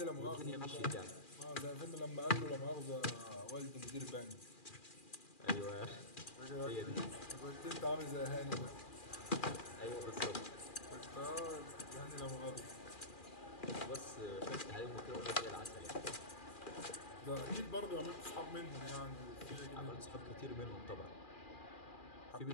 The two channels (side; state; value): right; late; 2.4 ms